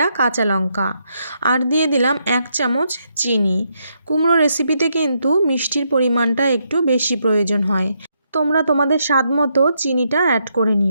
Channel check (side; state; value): both; inverted; correlation -0.78